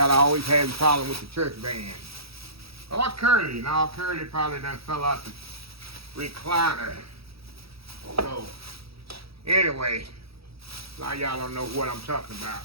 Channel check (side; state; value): left; late; 0.76 ms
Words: always having a problem with the church band. Or Curly. Now Curly probably done fell out the recliner. So, anyway, a lot of y'all don't know what I'm talking about,